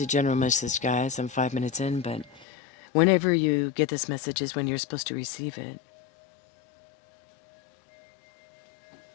general message, guys. I'm 5 minutes in, but whenever you get this message is when you're supposed to receive it.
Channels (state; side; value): drops out; right; at 2.5 s